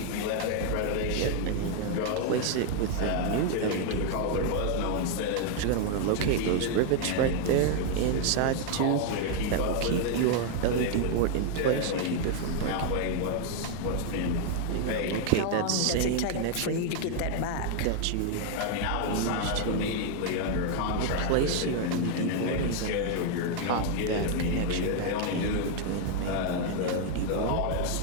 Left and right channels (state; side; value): different; both; correlation 0.00